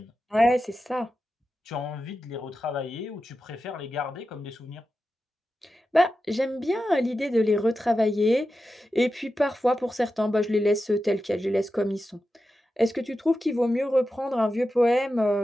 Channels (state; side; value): normal; both; correlation 0.91